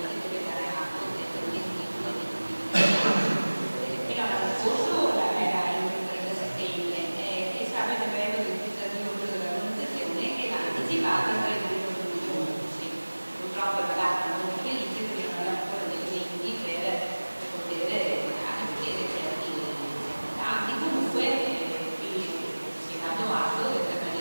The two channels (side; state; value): both; inverted; correlation -1.00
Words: deve dare atto del adempimento fino all'anno scorso era il 30 settembre e stava il decreto legislativo dell'organizzazione che l'ha anticipato il 31 giugno. Purtroppo è la data non felice perché non abbiamo ancora dei elementi per poter anche vedere certi dati. Comunque si è dato atto del